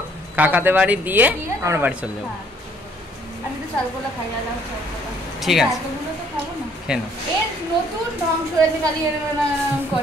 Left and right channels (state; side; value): normal; both; correlation 0.63